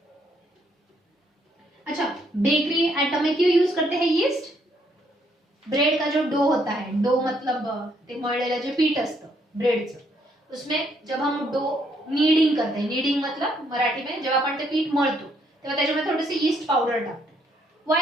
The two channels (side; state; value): both; normal; correlation 0.70